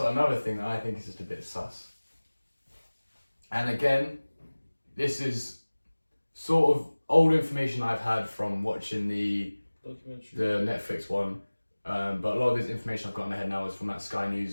thing that I think is just a bit sus. And again, this is sort of old information I've had from watching the Netflix one, but a lot of this information I've got in my head now is from that Sky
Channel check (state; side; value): inverted; both; correlation -1.00